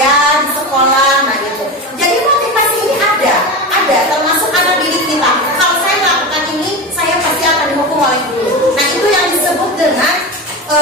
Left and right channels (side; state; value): both; normal; correlation 0.23